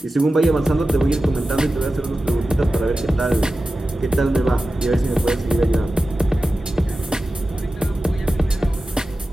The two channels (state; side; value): normal; both; correlation 0.94